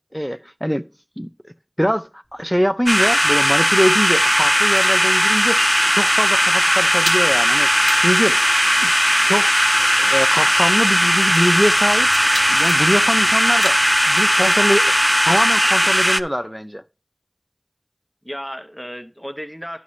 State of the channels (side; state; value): both; identical; correlation 1.00